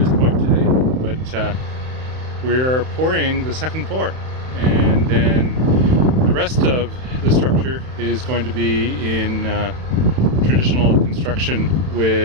point today, but we're pouring the second floor, and then the rest of the structure is going to be in traditional construction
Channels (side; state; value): left; late; 31 ms